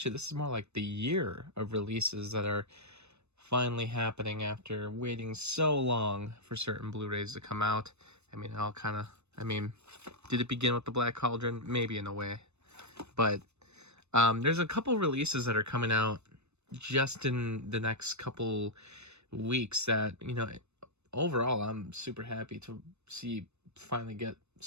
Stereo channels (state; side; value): late; left; 0.81 ms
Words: this is more like the year of releases that are finally happening after waiting so long for certain Blu-rays to come out. Did it begin with the Black Cauldron? Maybe in a way, but there's a couple releases that are coming out just in the next couple weeks that, overall I'm super happy to see finally get